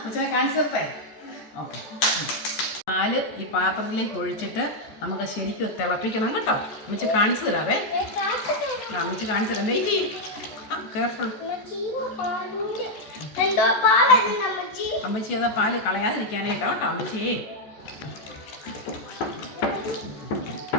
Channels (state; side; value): late; right; 14 ms